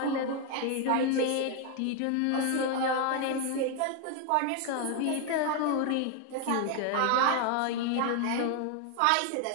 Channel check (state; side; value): different; both; correlation 0.01